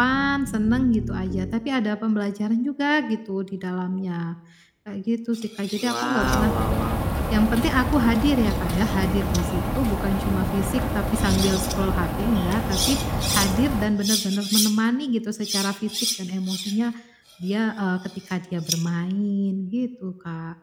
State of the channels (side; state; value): both; identical; correlation 1.00